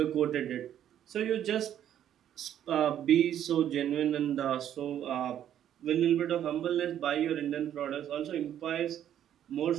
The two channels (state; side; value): quieter; left; 10.5 dB